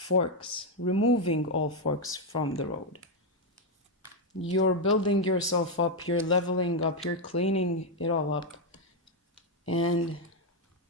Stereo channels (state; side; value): normal; both; correlation 0.02